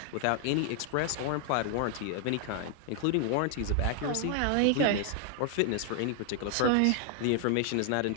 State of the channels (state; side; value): different; both; correlation 0.00